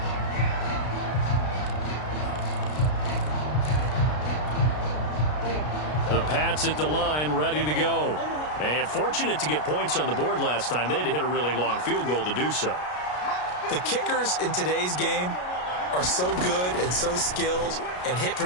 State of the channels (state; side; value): late; right; 33 ms